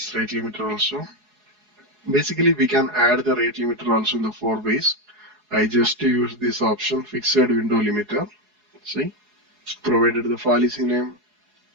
rate limiter also. Basically, we can add the rate limiter also in the 4 ways. I just use this option, fixed window limiter. See, provided the policy name,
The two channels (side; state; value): left; late; 4.7 ms